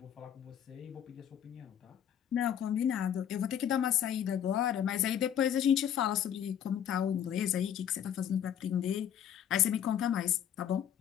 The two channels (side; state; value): right; quieter; 9.5 dB